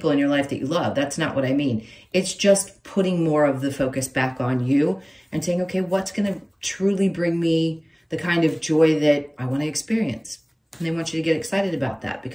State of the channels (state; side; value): identical; both; correlation 1.00